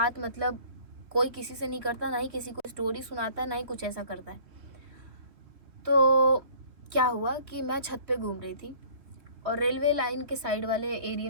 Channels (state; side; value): late; left; 3.2 ms